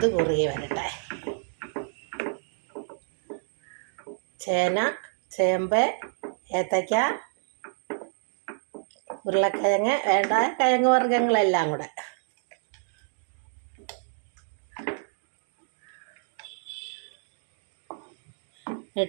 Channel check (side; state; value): left; silent; digital silence